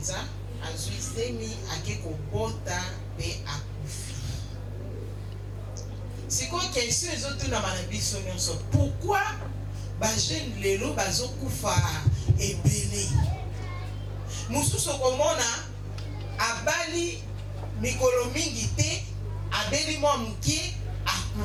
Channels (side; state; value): both; identical; correlation 1.00